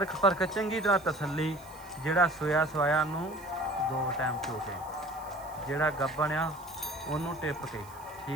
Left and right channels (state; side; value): noise; right; hiss, 22 dB below the sound